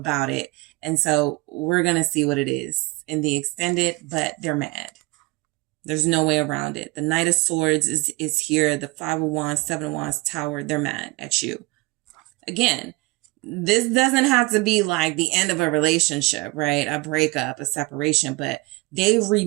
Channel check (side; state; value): left; quieter; 23.5 dB